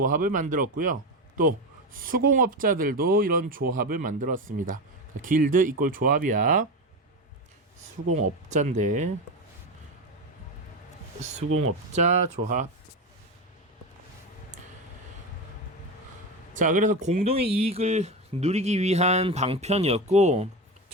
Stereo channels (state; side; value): normal; both; correlation 0.18